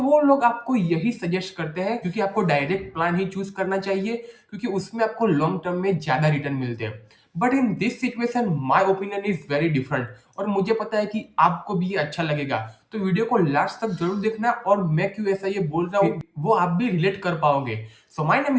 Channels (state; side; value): identical; both; correlation 1.00